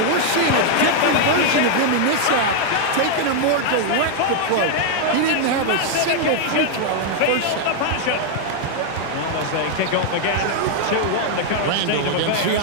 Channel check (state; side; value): different; both; correlation 0.00